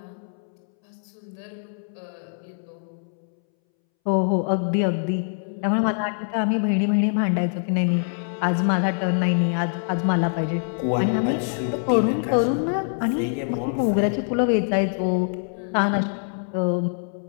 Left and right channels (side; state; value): right; silent; 62 dB below the other